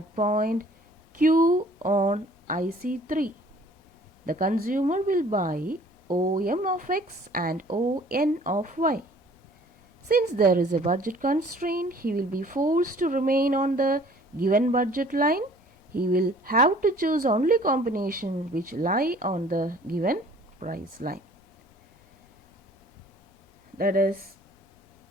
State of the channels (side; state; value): both; normal; correlation 0.53